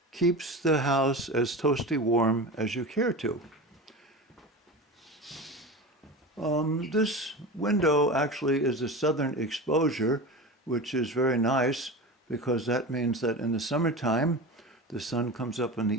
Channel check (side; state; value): both; normal; correlation 0.28